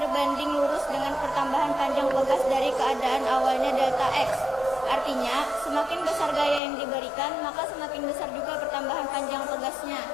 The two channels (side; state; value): right; drops out; at 6.6 s